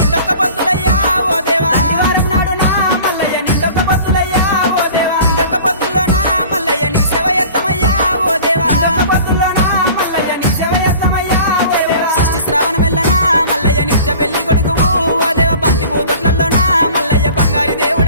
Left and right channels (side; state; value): both; inverted; correlation -0.43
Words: పొద్దులయ్యా ఓ దేవా దండివారం నాడునా మల్లయ్య నిండొక్క పొద్దులయ్యా ఓ దేవా నిండొక్క పొద్దుల్లోనా మల్లయ్య నీ సేవ ఎత్తమయ్యా ఓ దేవా నిండొక్క పొద్దుల్లోనా మల్లయ్య నీ సేవ ఎత్తమయ్యా ఓ దేవా షష్ఠి శ్రావణం వెళ్ళనా మల్లయ్య నిత్య పెళ్లి కొడుకువు ఓ దేవ బంతి పూతొట్లలోనా మల్లయ్య బంగారి